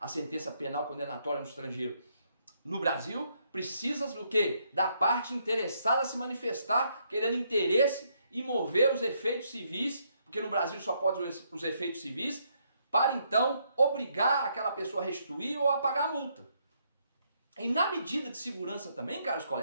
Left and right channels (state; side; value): inverted; both; correlation -0.73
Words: sentença penal condenatória no estrangeiro. No Brasil, precisa do quê? Da parte interessada se manifestar, querendo interesse e mover os efeitos civis, porque no Brasil só pode os efeitos civis, para então obrigar aquela pessoa a restituir ou a pagar a multa. E na medida de segurança também, caros